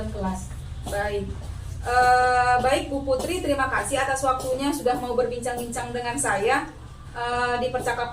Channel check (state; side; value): identical; both; correlation 1.00